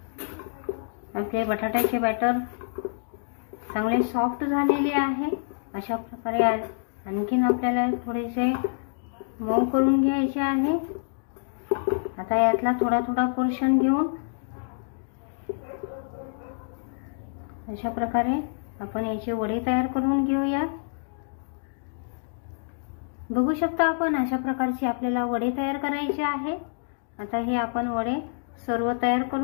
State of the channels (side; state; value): right; silent; digital silence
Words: आपले बटाट्याचे बॅटर चांगले सॉफ्ट झालेले आहे। अशा प्रकारे आणखीन आपल्याला थोडेसे मऊ करून घ्यायचे आहे। आता यातला थोडा थोडा पोर्शन घेऊन अशा प्रकारे आपण याची वडी तयार करून घेऊयात। बघू शकता आपण अशा प्रकारचे आपल्याला वडे तयार करायचे आहे। आता हे आपण वडे सर्व तयार